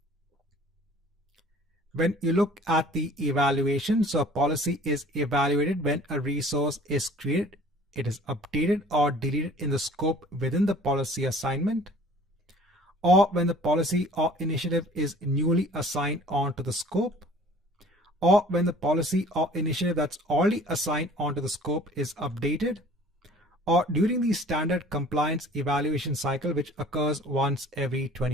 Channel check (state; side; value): normal; both; correlation 0.50